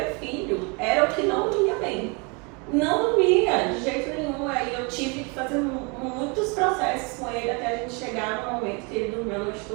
filho era o que não dormia bem. Não dormia, de jeito nenhum. Aí eu tive que fazer muitos processos com ele até a gente chegar no momento que ele dormiu a noite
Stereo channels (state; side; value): quieter; left; 31.7 dB